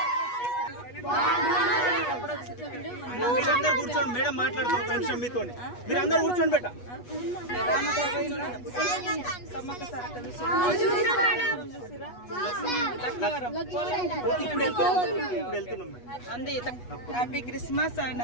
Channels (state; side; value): late; right; 8.2 ms